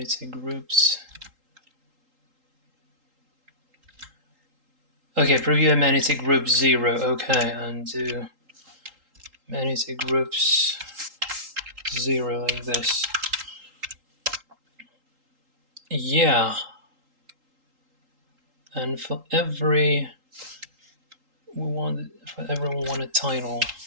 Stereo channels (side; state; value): left; late; 3.8 ms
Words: groups. Okay, preview amenity group 0. Okay, and do amenity groups 0 like this. Yeah. And for everyone want a title.